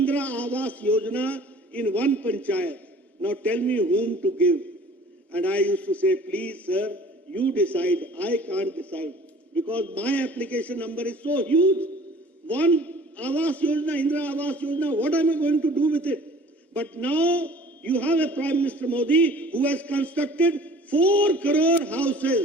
Awas Yojana in 1 panchayat. Now tell me whom to give. And I used to say, please sir, you decide. I can't decide. because my application number is so huge. One Awas Yojana, Indra Awas Yojana, what am I going to do with it? But now you have a Prime Minister Modi who has constructed 4 crore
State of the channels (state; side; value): normal; both; correlation 0.49